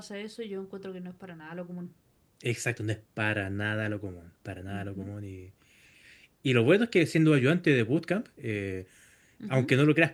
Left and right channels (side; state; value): both; identical; correlation 1.00